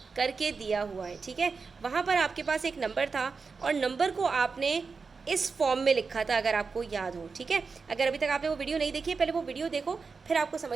करके दिया हुआ है। ठीक है, वहाँ पर आपके पास एक नंबर था और नंबर को आपने इस फॉर्म में लिखा था, अगर आपको याद हो। ठीक है, अगर अभी तक आपने वो वीडियो नहीं देखी है, पहले वो वीडियो देखो, फिर आपको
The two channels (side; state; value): left; quieter; 4.8 dB